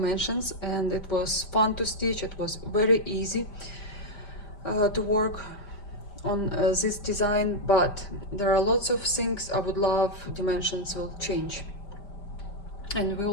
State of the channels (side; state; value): right; late; 5.1 ms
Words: and it was fun to stitch. It was very easy to work on this design, but there are lots of things I would love Dimensions will change. And we